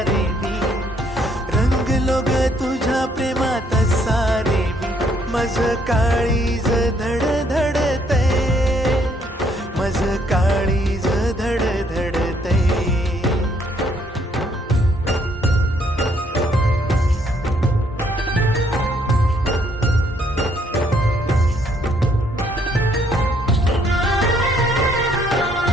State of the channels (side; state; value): both; normal; correlation 0.68